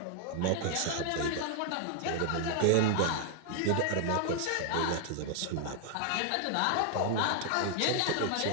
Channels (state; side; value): different; both; correlation 0.00